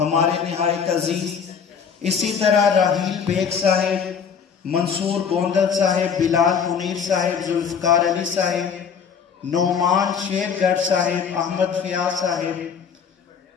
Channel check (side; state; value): right; quieter; 6.7 dB